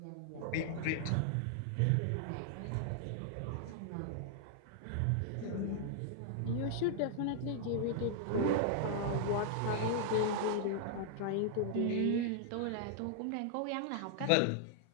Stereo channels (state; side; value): different; both; correlation -0.01